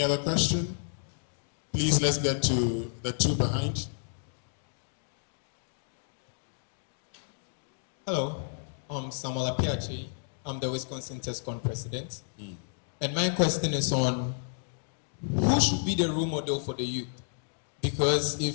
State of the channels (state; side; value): silent; right; digital silence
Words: other question? Please, let's get to the two behind. Hello, I'm Samuel Apiachi. I'm the Wisconsin TESCON president. And my question is on who should be the role model for the youth? Because